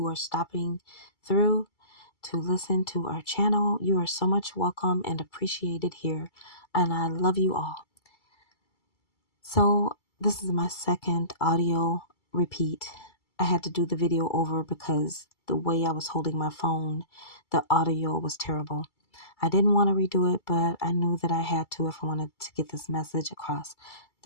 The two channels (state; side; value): late; right; 2.3 ms